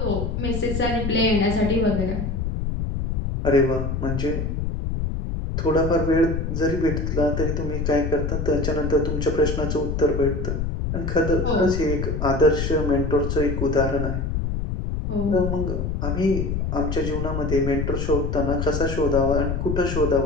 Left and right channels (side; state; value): left; noise; rumble, 2 dB below the sound